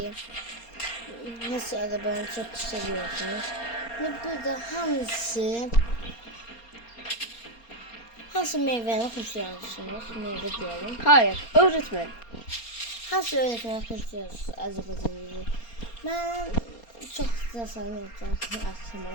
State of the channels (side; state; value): right; late; 4.3 ms